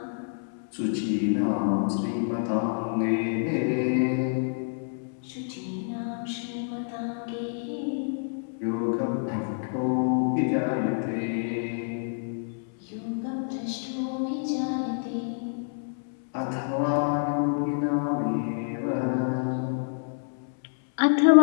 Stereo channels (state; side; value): silent; right; 59 dB below the other